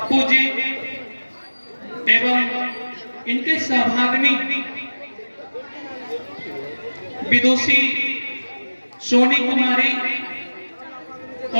जी एवं इनके सहभागिनी विदुषी सोनी कुमारी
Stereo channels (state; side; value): inverted; both; correlation -1.00